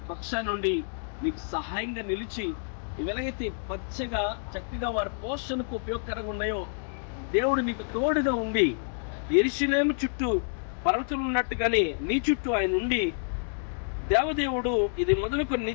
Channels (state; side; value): silent; right; digital silence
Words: పక్షాన్ని నుండి నీకు సహాయంగా నిలిచి, ఎలాగైతే పచ్చగా చక్కగా వారి పోషణకు ఉపయోగకరంగా ఉన్నాయో దేవుడు నీకు తోడుగా ఉండి, యెరూషలేము చుట్టూ పర్వతాలు ఉన్నట్టుగానే నీ చుట్టూ ఆయన ఉండి, దేవదేవుడు ఇది మొదలుకొని